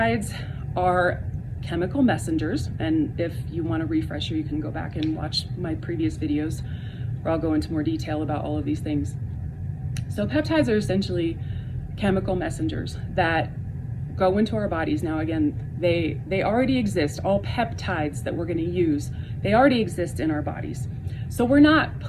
are chemical messengers, and if you want a refresher, you can go back and watch my previous videos where I'll go into more detail about all of these things. So peptides are essentially chemical messengers that go into our bodies. Now again, they already exist. All peptides that we're going to use, they already exist in our bodies. So we're not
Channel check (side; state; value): both; identical; correlation 1.00